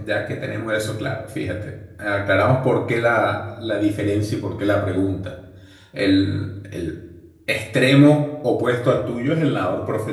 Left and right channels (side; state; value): both; identical; correlation 1.00